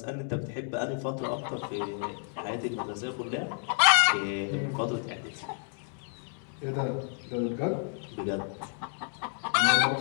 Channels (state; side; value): silent; right; 56 dB below the other